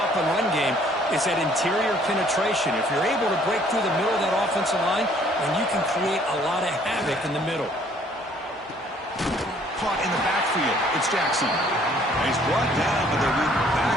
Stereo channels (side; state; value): both; normal; correlation 0.60